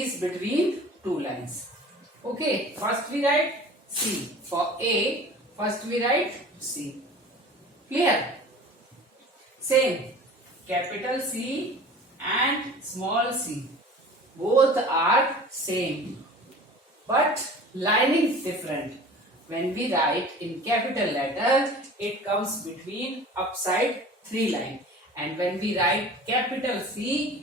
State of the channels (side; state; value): both; normal; correlation 0.42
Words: between two lines. Okay. First we write C. For A, first we write C. Clear? Same, capital C and small c, both are same, but lining is different. When we write in capital letter, it comes between upside three line, and when we write capital